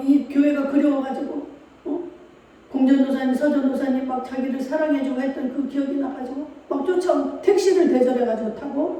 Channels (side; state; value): both; identical; correlation 1.00